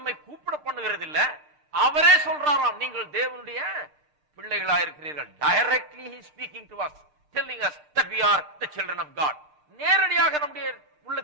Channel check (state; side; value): late; left; 6.6 ms